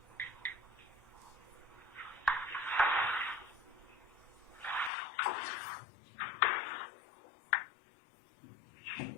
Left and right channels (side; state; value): right; drops out; at 4.9 s